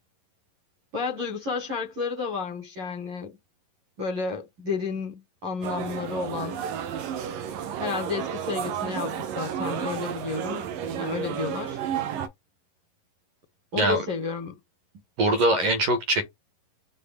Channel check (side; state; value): left; late; 11 ms